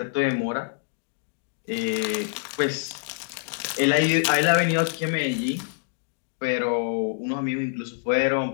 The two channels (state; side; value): silent; right; digital silence